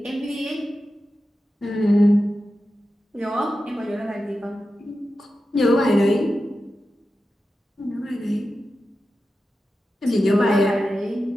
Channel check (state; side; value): normal; both; correlation 0.92